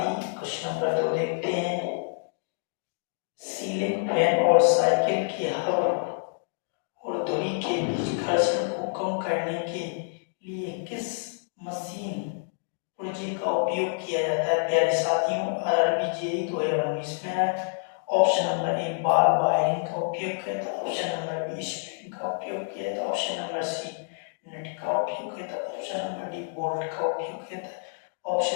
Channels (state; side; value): silent; right; digital silence